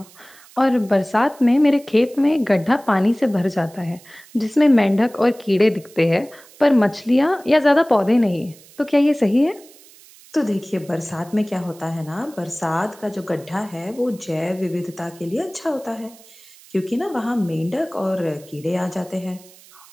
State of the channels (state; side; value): noise; right; hiss, 24 dB below the sound